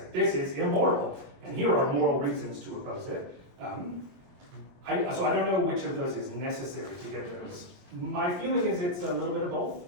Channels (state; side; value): late; left; 22 ms